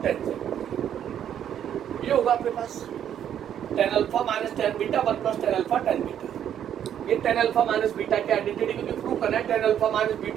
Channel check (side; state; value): left; quieter; 9.8 dB